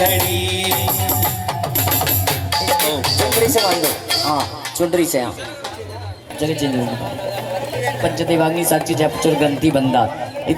चुंदरी से बांधो, हाँ चुंदरी से, हाँ चलिए चलिए। पंचदेवाग्नि साक्षी जपचुर ग्रंथि बंदा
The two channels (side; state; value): both; identical; correlation 1.00